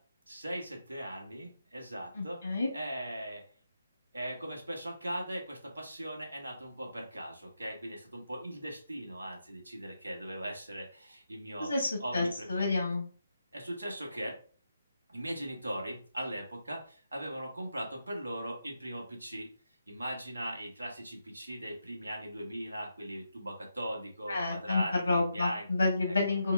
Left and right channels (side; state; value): both; inverted; correlation -0.84